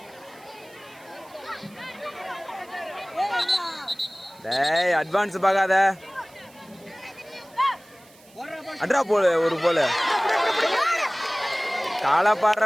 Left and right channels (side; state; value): right; noise; hiss, 26 dB below the sound